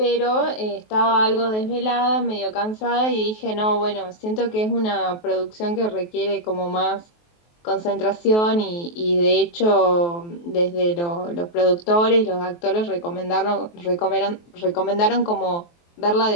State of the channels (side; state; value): right; late; 23 ms